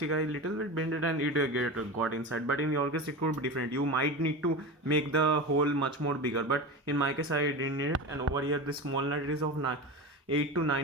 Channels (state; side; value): normal; both; correlation 0.26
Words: I little bit bended and it got inside. But in your case it could be different. You might need to make the hole much more bigger, but in my case I didn't need it. And over here this small nut is of 8 to